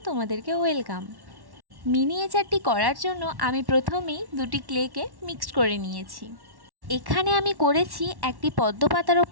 তোমাদেরকে ওয়েলকাম। মিনিয়েচারটি করার জন্য আমি প্রথমেই দুটি ক্লেকে মিক্সড করে নিয়েছি। এখানে আমি করেছি একটি পদ্ম পাতার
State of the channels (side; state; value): left; late; 1.1 ms